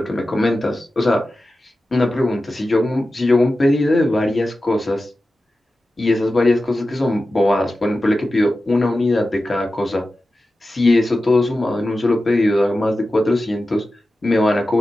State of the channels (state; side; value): normal; both; correlation 0.94